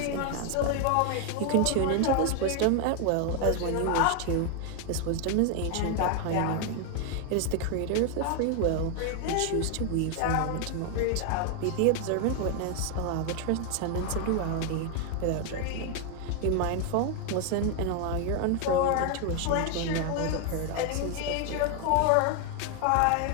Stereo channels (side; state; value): both; different; correlation 0.01